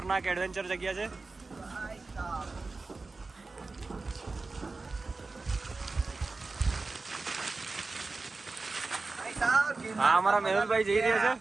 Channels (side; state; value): left; quieter; 3.8 dB